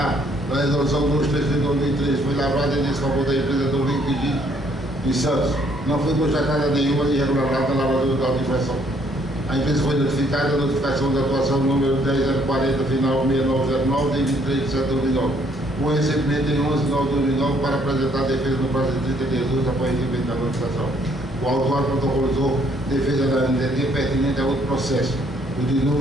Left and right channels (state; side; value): normal; both; correlation 0.66